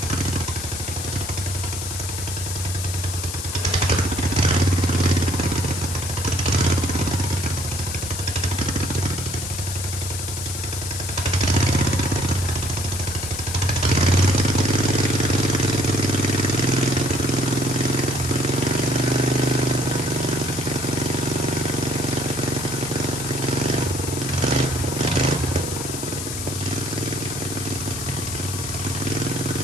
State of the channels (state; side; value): noise; left; hiss, 6 dB below the sound